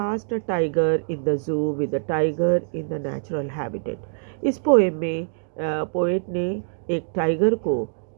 a tiger in the जू with a tiger in the natural habitat. इस पोएम में पोएट ने एक टाइगर को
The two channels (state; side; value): silent; left; digital silence